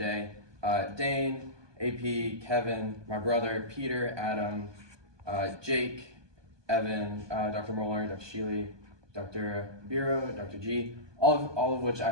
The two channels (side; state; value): left; late; 1.2 ms